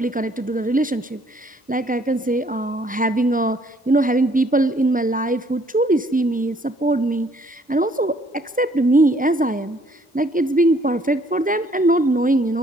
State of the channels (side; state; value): both; normal; correlation 0.62